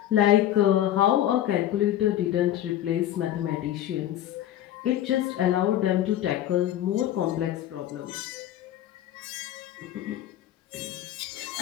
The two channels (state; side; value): quieter; right; 12.3 dB